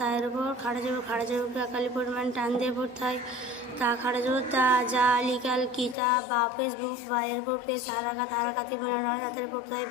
উপর খাড়া জবরকে একালি পরিমাণ টান দিয়ে পড়তে হয়। তা খাড়া জবর তা, জালি কাল কি, তা বা ফেসবুক, বা এর উপর পেশ হারাকাতি বিনা তাদের পড়তে হয়।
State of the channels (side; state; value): right; drops out; at 6.0 s